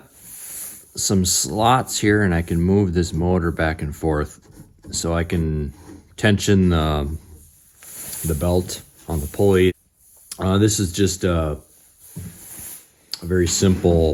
some slots here and I can move this motor back and forth so I can tension the belt on the pulley. This is just a very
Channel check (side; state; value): both; identical; correlation 1.00